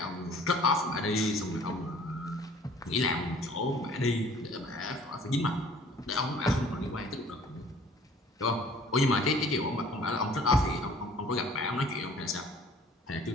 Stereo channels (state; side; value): normal; both; correlation 0.52